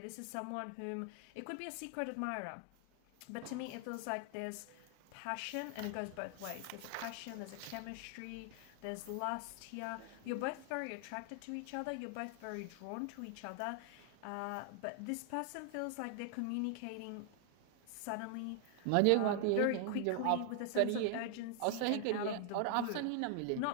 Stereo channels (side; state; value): both; different; correlation 0.00